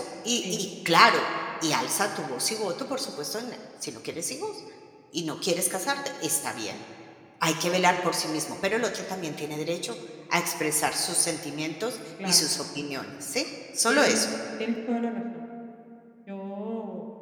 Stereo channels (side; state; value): both; identical; correlation 1.00